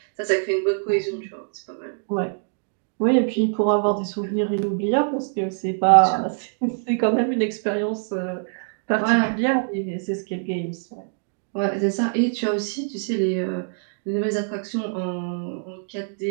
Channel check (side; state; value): left; silent; digital silence